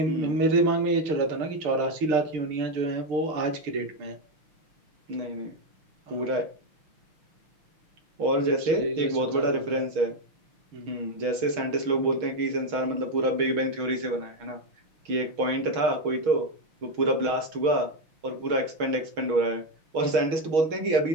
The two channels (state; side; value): late; left; 6.3 ms